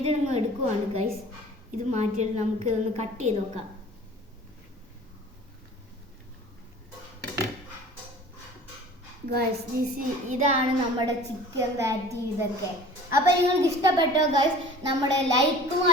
നിങ്ങൾ എടുക്കുവാണ് ഗൈസ്. ഇത് മാറ്റിയിട്ട് നമുക്ക് ഒന്ന് കട്ട് ചെയ്ത് നോക്കാം. ഗൈസ് ഇതാണ് നമ്മുടെ ചിക്കൻ പാറ്റി ഇതൊക്കെ. അപ്പോൾ നിങ്ങൾക്ക് ഇഷ്ടപ്പെട്ടോ ഗൈസ്? നമ്മുടെ ലൈക്കും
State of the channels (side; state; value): both; normal; correlation 0.44